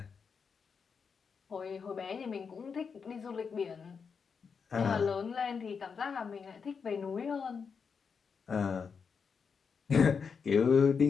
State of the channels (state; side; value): quieter; right; 5.9 dB